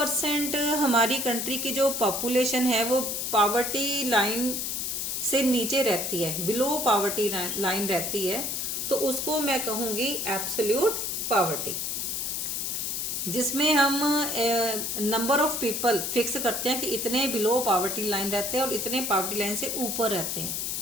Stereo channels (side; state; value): left; noise; hiss, 2 dB below the sound